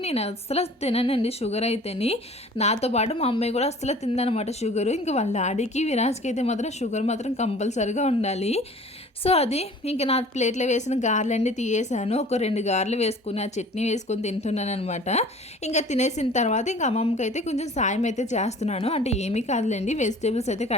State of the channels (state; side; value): normal; both; correlation 0.47